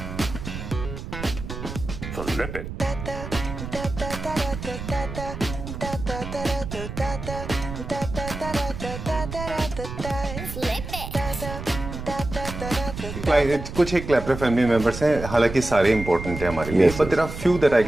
Flip it. कुछ एक क्लैपर फैमिली मेंबर्स हैं, हालांकि सारे इंपॉर्टेंट हैं हमारे लिए, but there are few that I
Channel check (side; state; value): right; noise; rumble, 8 dB below the sound